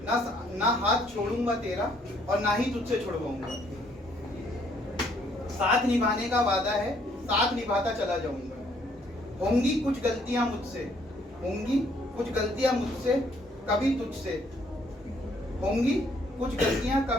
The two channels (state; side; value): normal; both; correlation 0.66